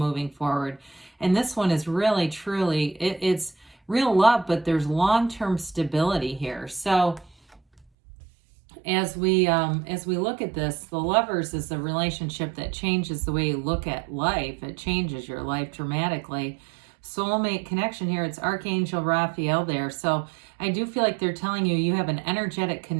forward. And this one is really, truly, it's real love, but there's long-term stability here. So as we look at this, the Lovers is a relationship that changes the way you look at life. It changes your life dramatically. Soulmate connection here. It's Archangel Raphael there. So I do feel like they're telling you you have an energetic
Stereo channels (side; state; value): left; drops out; at 7.9 s